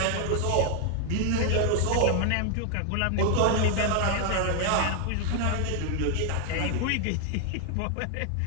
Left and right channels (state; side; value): different; both; correlation 0.00